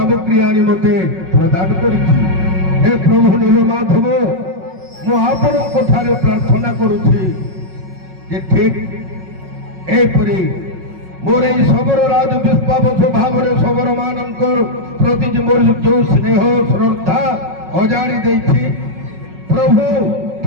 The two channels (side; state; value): left; late; 5.4 ms